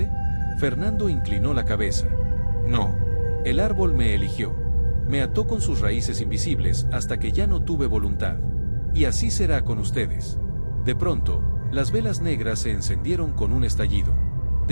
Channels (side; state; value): both; inverted; correlation -1.00